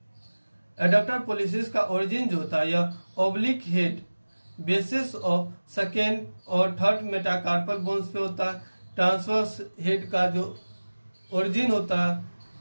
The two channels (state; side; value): inverted; both; correlation -1.00